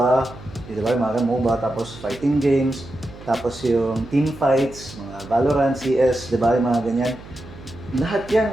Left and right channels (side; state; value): right; noise; hum, 17 dB below the sound